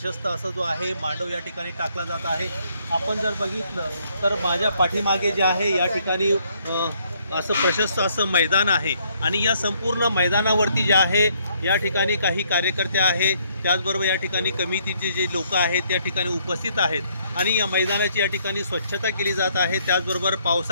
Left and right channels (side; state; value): both; inverted; correlation -0.69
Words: असं जो आहे मांडव या ठिकाणी टाकला जात आहे. आपण जर बघितलं तर माझ्या पाठीमागे जे आहे या ठिकाणी असं प्रशस्त असं मैदान आहे आणि या संपूर्ण मैदानावरती जे आहे या ठिकाणी काही कार्यकर्ते आहेत, त्याचबरोबर या ठिकाणी कमिटीचे जे लोक आहेत त्या ठिकाणी उपस्थित आहेत आणि या मैदानाची या ठिकाणी स्वच्छता केली जात आहे. त्याचबरोबर